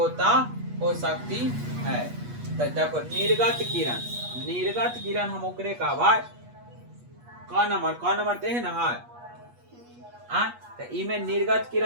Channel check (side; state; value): left; late; 8.3 ms